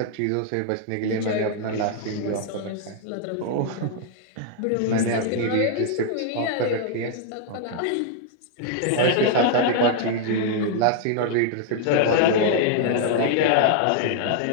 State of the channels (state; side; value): different; both; correlation -0.01